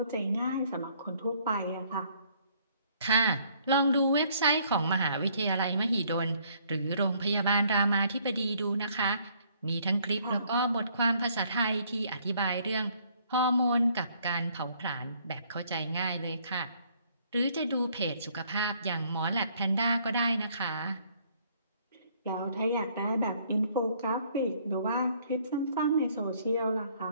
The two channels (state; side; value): inverted; both; correlation -0.64